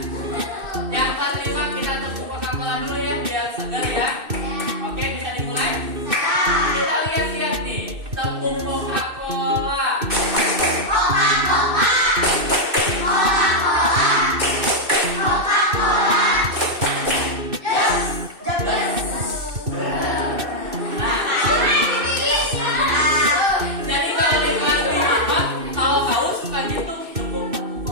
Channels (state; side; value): late; left; 2.6 ms